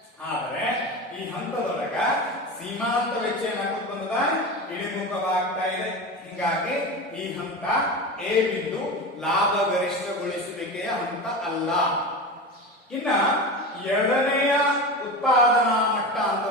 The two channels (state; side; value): normal; both; correlation 0.26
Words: ಆದ್ರೆ ಈ ಹಂತದೊಳಗ ಸೀಮಾಂತ ವೆಚ್ಚ ಏನಾಗುತ್ತೆ ಬಂದದ ಇಳಿಮುಖವಾಗ್ತಾ ಇದೆ. ಹಿಂಗಾಗಿ ಈ ಹಂತ ಎ ಬಿಂದು ಲಾಭ ಗರಿಷ್ಠಗೊಳಿಸುವಿಕೆಯ ಹಂತ ಅಲ್ಲ. ಇನ್ನ ಎರಡನೆಯ ಉತ್ಪಾದನಾ ಮಟ್ಟ